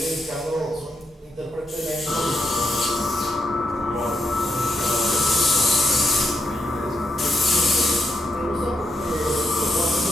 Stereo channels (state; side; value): normal; both; correlation 0.81